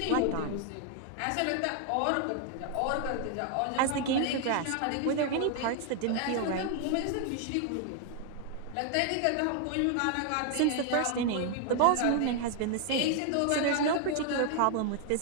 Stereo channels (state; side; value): different; both; correlation 0.00